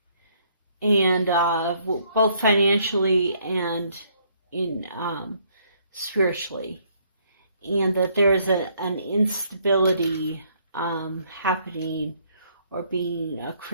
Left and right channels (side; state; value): both; inverted; correlation -0.67